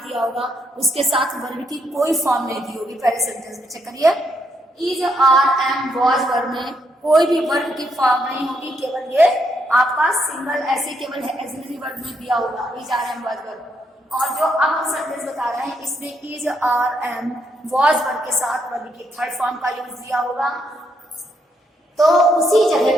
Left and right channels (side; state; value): both; normal; correlation 0.76